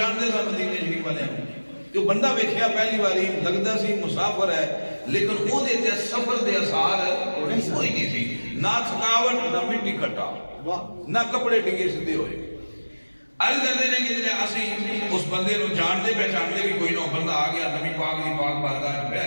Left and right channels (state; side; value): inverted; both; correlation -1.00